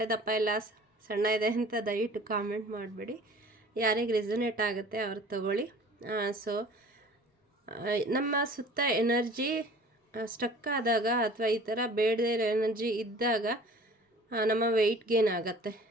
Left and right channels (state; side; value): normal; both; correlation 0.47